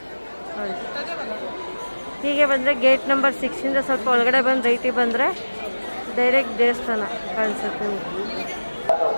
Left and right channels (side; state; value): both; inverted; correlation -1.00